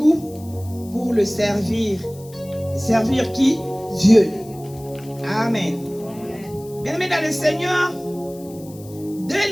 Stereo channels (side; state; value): left; noise; hiss, 22 dB below the sound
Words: pour le servir. Servir qui? Dieu. Amen. Bien-aimé dans le Seigneur, dès